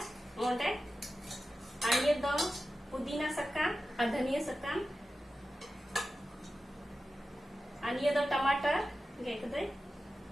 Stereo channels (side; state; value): both; normal; correlation 0.93